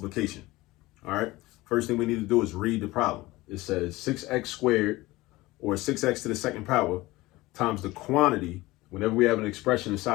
All right. First thing we need to do is read the problem. It says 6x squared, or 6x to the second power, times the quantity. Whenever we have an expression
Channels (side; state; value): right; quieter; 19.6 dB